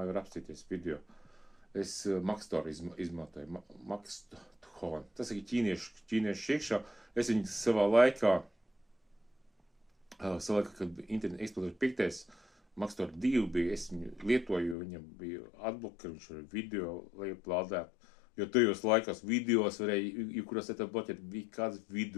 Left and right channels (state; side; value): drops out; right; at 14.8 s